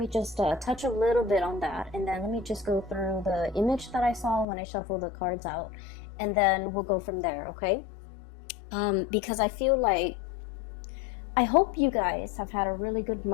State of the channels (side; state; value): right; drops out; at 4.5 s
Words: just touch a little bit on that. And then let me just go through the image that I saw when I shuffled the cards out. And then we'll go from there, okay? Because I feel like, I hope you guys have had a really good